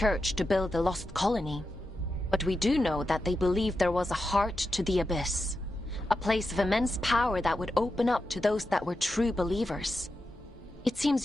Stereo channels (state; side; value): normal; both; correlation 0.89